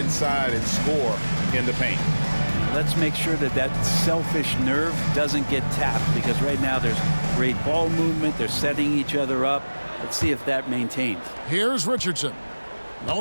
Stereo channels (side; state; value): both; inverted; correlation -1.00